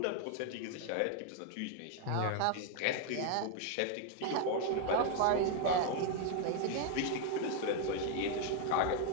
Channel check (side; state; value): both; different; correlation 0.00